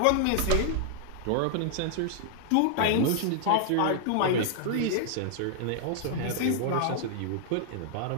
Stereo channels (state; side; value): different; both; correlation -0.01